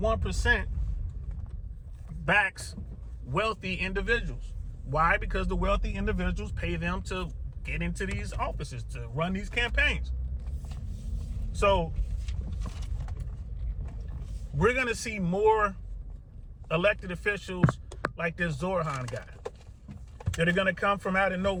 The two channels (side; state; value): both; identical; correlation 1.00